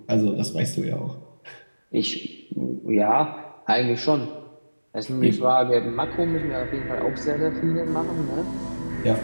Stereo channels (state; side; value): inverted; both; correlation -1.00